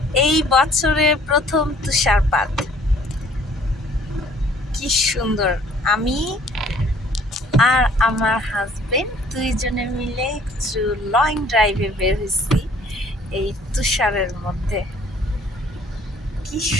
এই বছরে প্রথম তুষারপাত, কি সুন্দর। আমি আর আমার হাজবেন্ড দুইজনে মিলে একটু লং ড্রাইভে বের হয়েছি এই তুষারের মধ্যে। কি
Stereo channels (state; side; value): normal; both; correlation 0.57